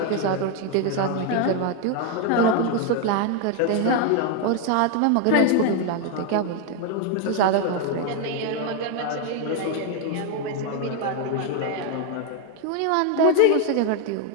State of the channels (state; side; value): different; both; correlation 0.01